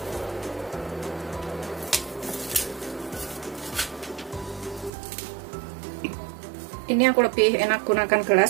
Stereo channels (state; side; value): drops out; left; at 4.9 s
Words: Ini aku lebih enak gunakan